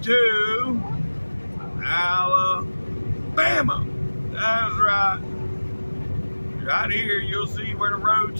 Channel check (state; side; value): inverted; both; correlation -1.00